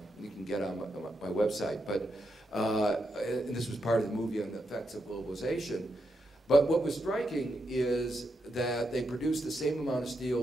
you can get on my website. But and this was part of the movie on the effects of globalization. But what was striking is that they produced the same amount of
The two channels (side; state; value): both; normal; correlation 0.83